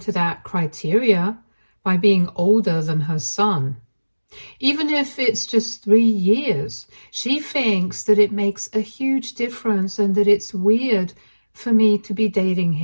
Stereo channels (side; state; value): both; inverted; correlation -1.00